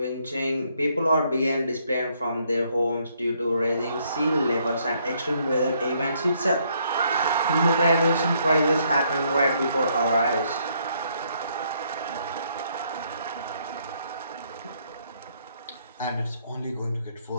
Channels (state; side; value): inverted; both; correlation -0.70